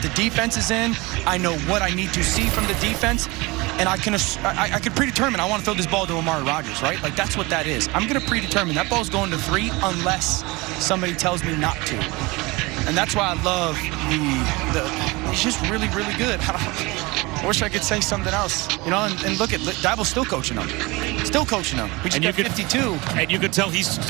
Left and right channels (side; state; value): left; quieter; 23.9 dB